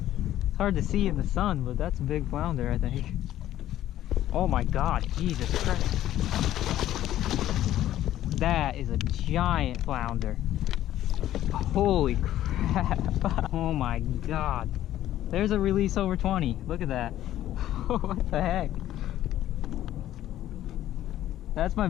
It's hard to see in the sun, but that's a big flounder, I think. Oh my god, Jesus Christ. That is a giant flounder. Holy crap. Oh my god. There's a release over 20. Look at that. What the heck? That's my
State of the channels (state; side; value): quieter; right; 13.0 dB